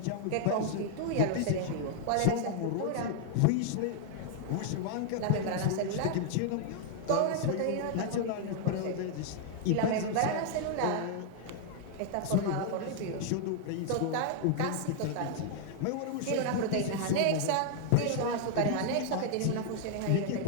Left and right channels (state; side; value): different; both; correlation -0.01